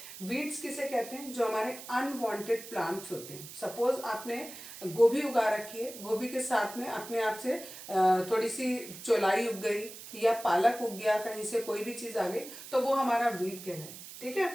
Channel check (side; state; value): right; noise; hiss, 13 dB below the sound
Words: वीड्स किसे कहते हैं? जो हमारे अनवांटेड प्लांट्स होते हैं। सपोज आपने गोभी उगा रखी है, गोभी के साथ में अपने आप से थोड़ी सी चौलाई उग गई या पालक उग गया, कहीं से कोई भी चीज़ आ गई तो वो हमारा वीड कहलाए, ठीक